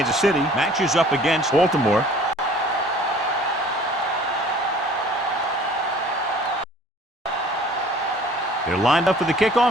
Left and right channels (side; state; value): both; normal; correlation 0.51